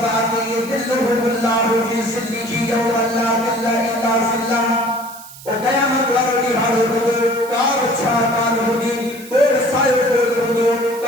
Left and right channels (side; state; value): right; noise; hiss, 17 dB below the sound